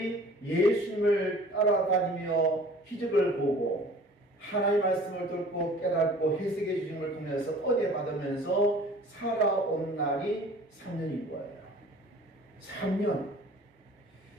예수님을 따라다니며 기적을 보고 하나님의 말씀을 듣고 깨닫고 해석해 주신 걸 통해서 은혜 받으면서 살아온 날이 3년인 거예요. 3년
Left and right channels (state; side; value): normal; both; correlation 0.48